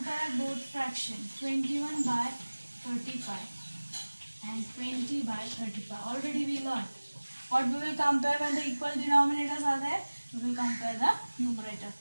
both fractions, 21 by 35 and 20 by 35, already we learned. What we will compare when the equal denominators are there? We will compare the numerator.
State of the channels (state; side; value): inverted; both; correlation -1.00